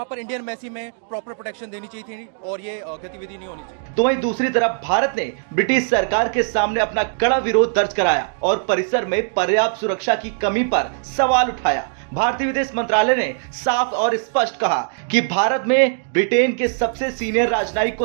पर इंडियन एम्बेसी में प्रॉपर प्रोटेक्शन देनी चाहिए थी और ये गतिविधि नहीं होनी चाहिए। तो वहीं दूसरी तरफ भारत ने ब्रिटिश सरकार के सामने अपना कड़ा विरोध दर्ज कराया और परिसर में पर्याप्त सुरक्षा की कमी पर सवाल उठाया। भारतीय विदेश मंत्रालय ने साफ और स्पष्ट कहा कि भारत में ब्रिटेन के सबसे सीनियर राजनयिक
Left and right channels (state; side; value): silent; left; digital silence